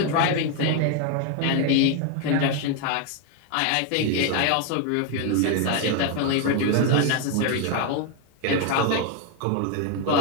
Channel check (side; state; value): both; different; correlation 0.01